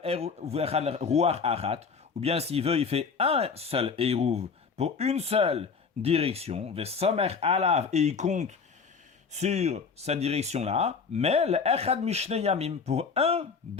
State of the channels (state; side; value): quieter; right; 5.5 dB